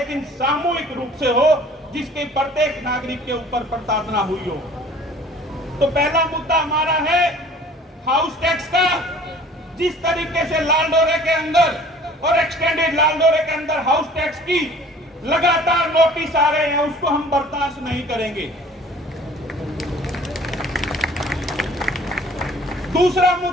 सामूहिक रूप से हो, जिसके प्रत्येक नागरिक के ऊपर प्रताड़ना हुई हो। तो पहला मुद्दा हमारा है हाउस टैक्स का। जिस तरीके से लालडोरे के अंदर और एक्सटेंडेड लालडोरे के अंदर हाउस टैक्स की लगातार नोटिस आ रहे हैं, उसको हम बर्दाश्त नहीं करेंगे। दूसरा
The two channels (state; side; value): normal; both; correlation 0.50